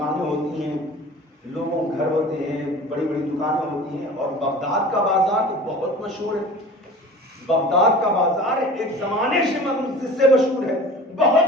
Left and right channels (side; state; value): both; normal; correlation 0.41